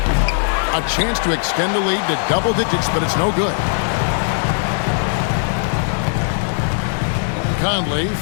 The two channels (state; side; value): silent; right; digital silence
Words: A chance to extend the lead to double digits, but it's no good. Conley